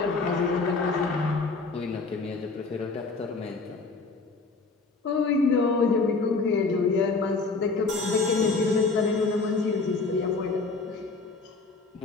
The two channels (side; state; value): right; quieter; 4.0 dB